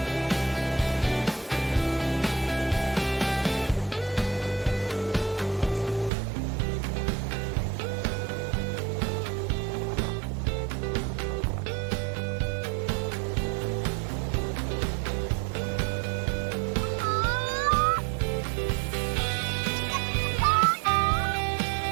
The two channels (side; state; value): left; drops out; at 6.1 s